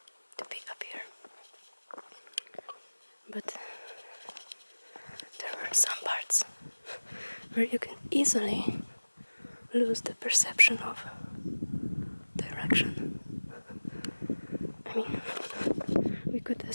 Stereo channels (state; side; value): inverted; both; correlation -1.00